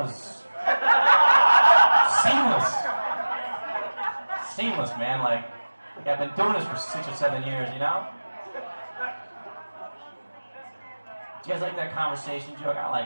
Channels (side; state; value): both; inverted; correlation -1.00